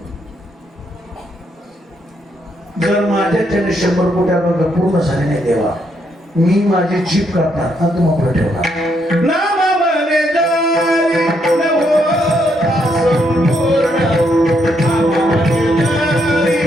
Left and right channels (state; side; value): normal; both; correlation 0.76